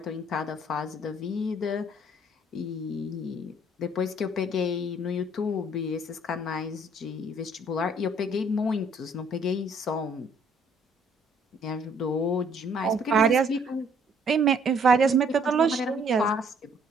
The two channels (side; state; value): both; normal; correlation 0.62